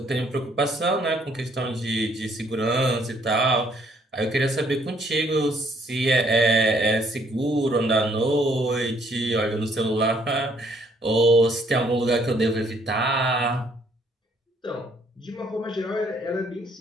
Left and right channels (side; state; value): both; normal; correlation 0.66